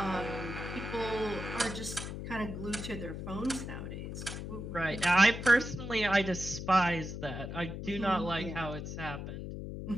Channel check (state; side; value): noise; left; hum, 7 dB below the sound